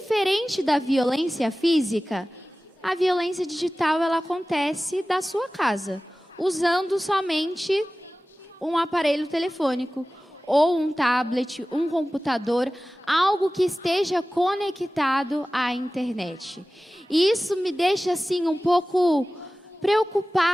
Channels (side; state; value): both; normal; correlation 0.97